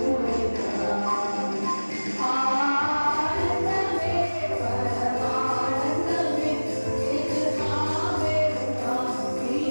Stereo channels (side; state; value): both; inverted; correlation -1.00